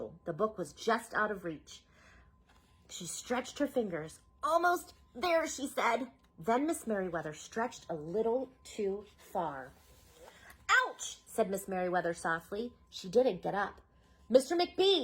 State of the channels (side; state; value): both; identical; correlation 1.00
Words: The book was just out of reach. She stretched her fingers. "Almost there," she said. Then Miss Merriweather stretched a little too far. "Ouch!" said Miss Merriweather softly. She didn't get up. "Mr.